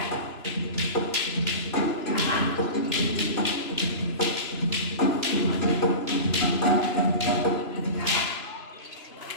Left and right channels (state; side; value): late; right; 2.9 ms